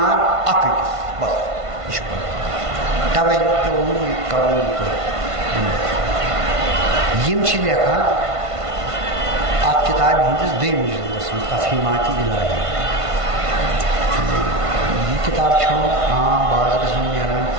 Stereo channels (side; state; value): left; late; 1.5 ms